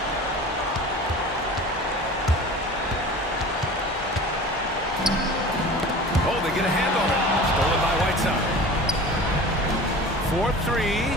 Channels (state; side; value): normal; both; correlation 0.38